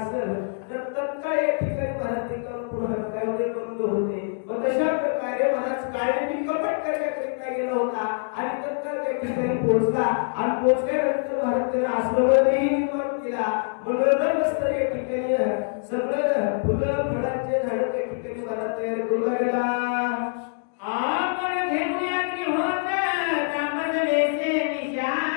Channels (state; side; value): silent; right; digital silence